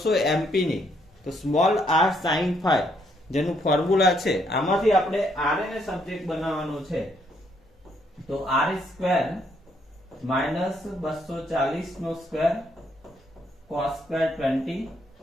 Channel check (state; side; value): normal; both; correlation 0.72